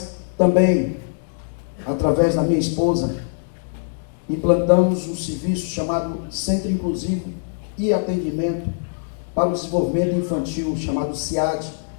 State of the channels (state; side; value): silent; right; digital silence